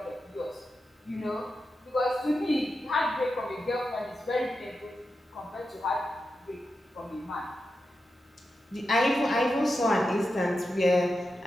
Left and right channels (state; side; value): normal; both; correlation 0.89